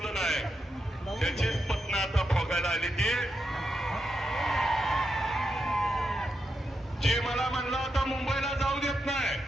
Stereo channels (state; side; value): normal; both; correlation 0.85